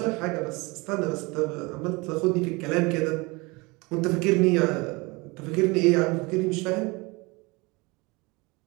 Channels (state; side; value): quieter; left; 25.5 dB